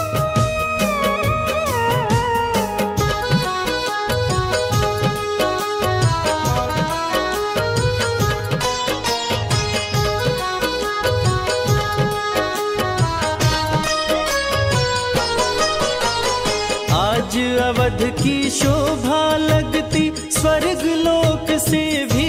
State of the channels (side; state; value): both; identical; correlation 1.00